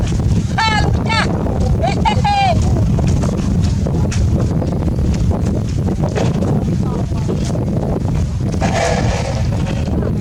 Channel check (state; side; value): identical; both; correlation 1.00